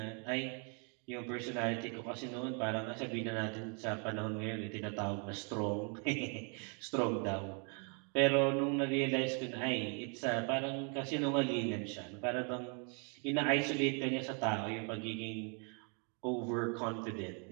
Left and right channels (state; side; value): quieter; left; 38.3 dB